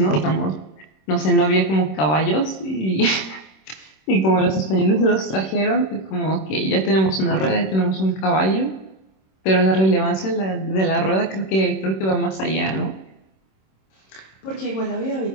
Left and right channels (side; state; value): right; late; 26 ms